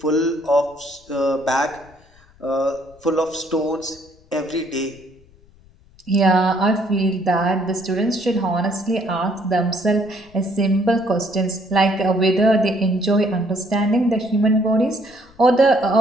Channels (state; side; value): noise; left; rumble, 28 dB below the sound